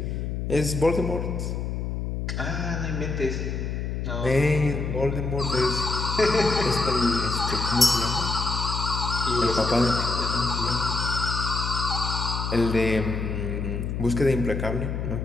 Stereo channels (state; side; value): noise; left; hum, 3 dB below the sound